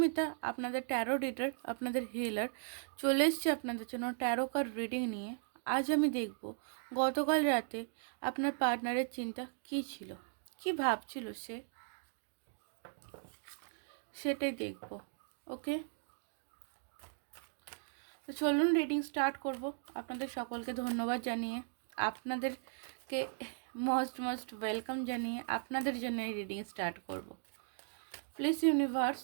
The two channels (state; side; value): silent; left; digital silence